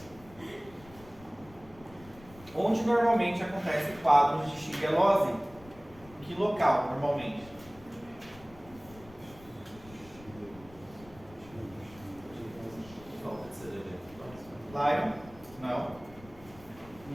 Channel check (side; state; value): left; noise; rumble, 21 dB below the sound